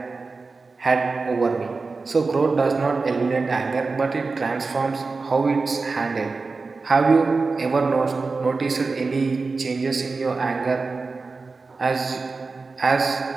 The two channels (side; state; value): left; quieter; 4.1 dB